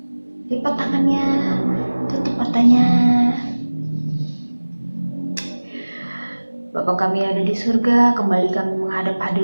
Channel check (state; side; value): inverted; both; correlation -1.00